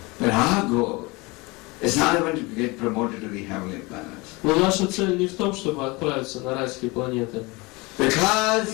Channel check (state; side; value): quieter; right; 24.8 dB